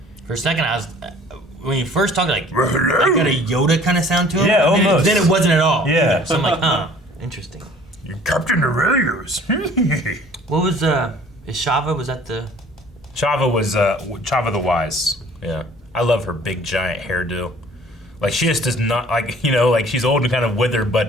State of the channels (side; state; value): both; normal; correlation 0.51